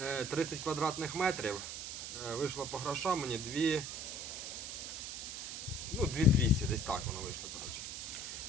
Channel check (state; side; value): noise; right; hiss, 6 dB below the sound